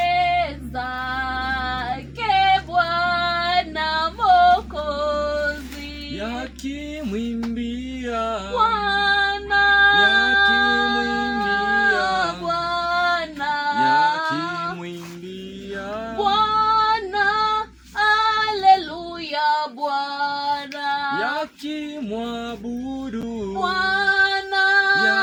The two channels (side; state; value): both; identical; correlation 1.00